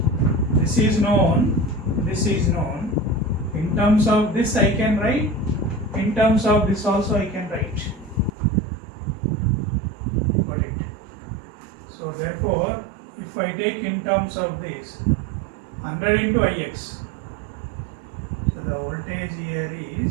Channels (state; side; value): drops out; left; at 8.3 s